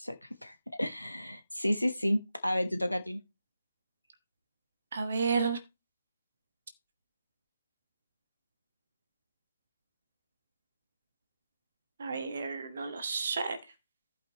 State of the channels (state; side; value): inverted; both; correlation -0.88